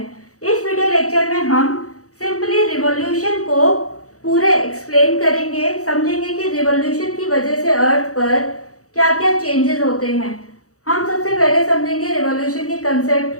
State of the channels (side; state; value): right; late; 0.65 ms